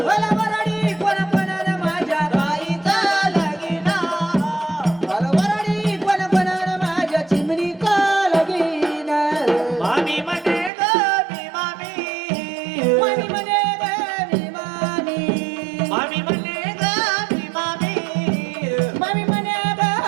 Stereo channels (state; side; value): drops out; left; at 10.7 s